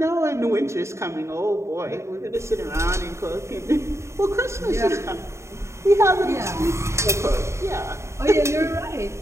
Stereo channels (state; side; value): late; left; 0.14 ms